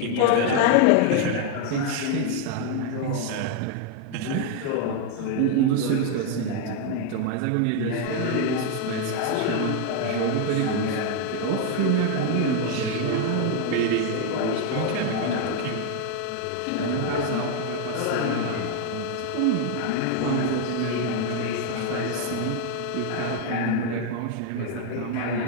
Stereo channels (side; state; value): both; different; correlation 0.01